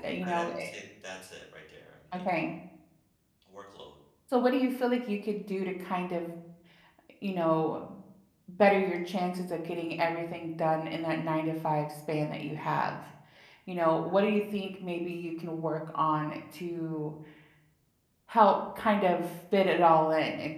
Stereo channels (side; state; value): both; identical; correlation 1.00